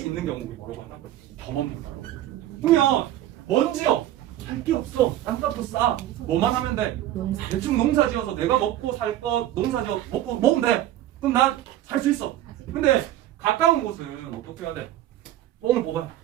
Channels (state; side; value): quieter; left; 13.2 dB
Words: 있는 경우를 뭐라고 하나? 겸업농가라고. 그러면 먼지요. 할 게 없어. 땅값도 싸. 뭐만 하면 돼? 대충 농사 지어서 내가 먹고 살 거 농사 지어 먹고 먹으면 돼. 그럼 난 살 수 있어. 근데 가까운 곳은 어떻게 해야 돼? 뽕을 뽑아.